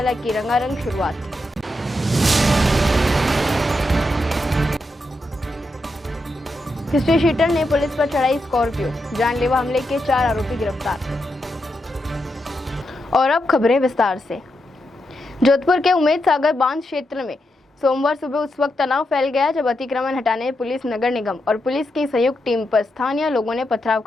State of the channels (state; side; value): normal; both; correlation 0.85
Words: की रंगारंग शुरुआत। हिस्ट्री शीटर ने पुलिस पर चढ़ाई स्कॉर्पियो, जानलेवा हमले के 4 आरोपी गिरफ्तार। और अब खबरें विस्तार से। जोधपुर के उम्मेद सागर बांध क्षेत्र में सोमवार सुबह उस वक्त तनाव फैल गया जब अतिक्रमण हटाने पुलिस, नगर निगम और पुलिस की संयुक्त टीम पर स्थानीय लोगों ने पथराव